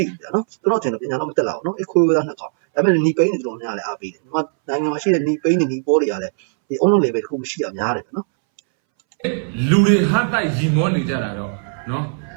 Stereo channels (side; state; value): left; silent; 64 dB below the other